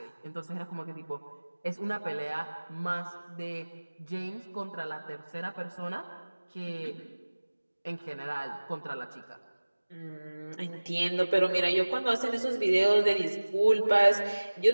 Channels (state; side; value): inverted; both; correlation -1.00